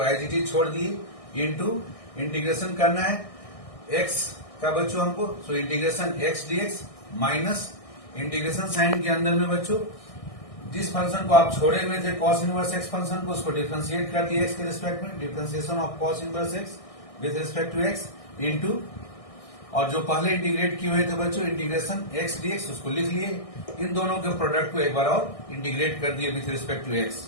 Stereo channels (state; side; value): late; right; 1.6 ms